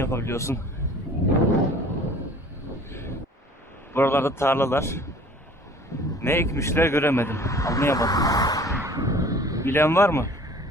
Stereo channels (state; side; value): normal; both; correlation 0.48